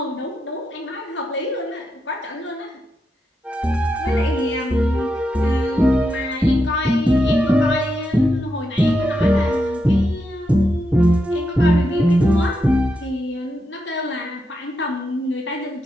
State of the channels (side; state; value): both; normal; correlation 0.84